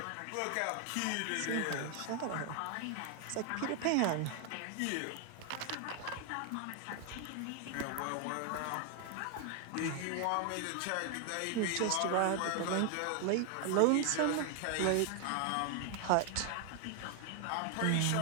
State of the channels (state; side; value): different; both; correlation 0.00